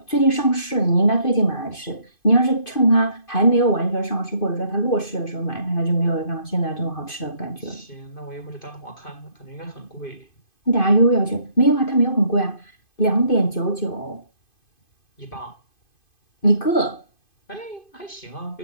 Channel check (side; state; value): right; late; 2.5 ms